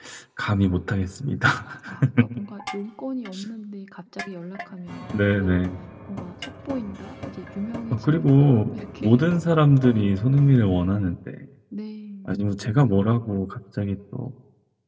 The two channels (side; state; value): both; identical; correlation 1.00